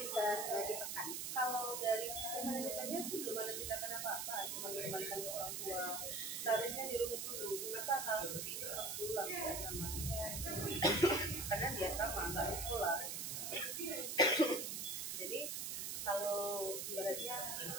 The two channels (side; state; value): right; noise; hiss, 3 dB below the sound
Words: bisa ditekan? Kalau dari sisi manajemennya sih belum ada tindakan apa-apa, cuma dikembalikan ke orang tua. Seharusnya dirunut dulu, kenapa hal seperti itu harus diulang ya sama. Karena dia sama, nggak di sekolah. Jadi kalau ibaratnya